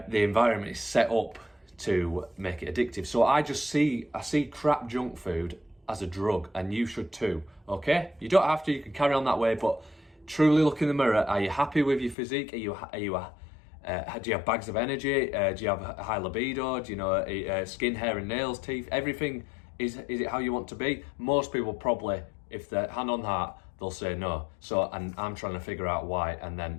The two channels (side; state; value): right; drops out; at 12.2 s